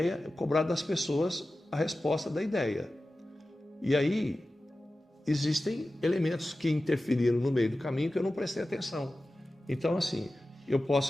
cobrar das pessoas a resposta da ideia. E aí existem elementos que interferiram no meio do caminho que eu não prestei atenção. Então, assim, eu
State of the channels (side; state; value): both; normal; correlation 0.95